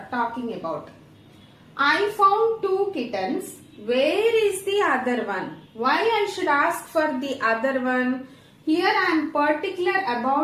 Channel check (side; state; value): both; identical; correlation 1.00